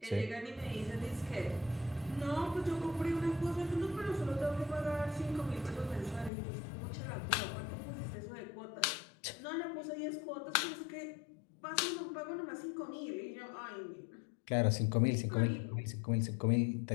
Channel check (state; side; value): drops out; right; at 6.3 s